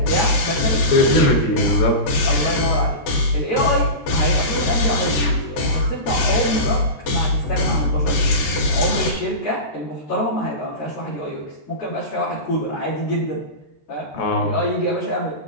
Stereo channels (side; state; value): right; late; 13 ms